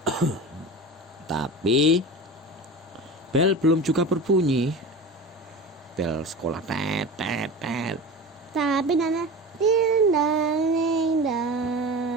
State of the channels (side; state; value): both; normal; correlation 0.31